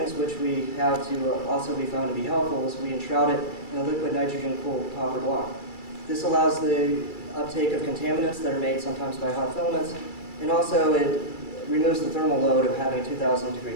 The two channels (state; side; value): late; right; 2.3 ms